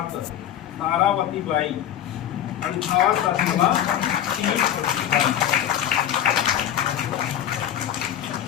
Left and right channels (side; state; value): right; quieter; 10.7 dB